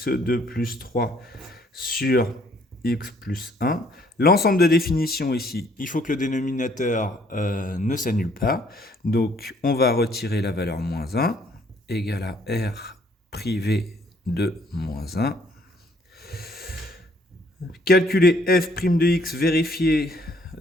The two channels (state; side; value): normal; both; correlation 0.63